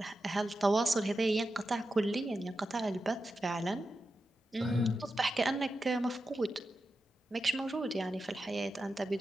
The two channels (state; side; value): normal; both; correlation 0.90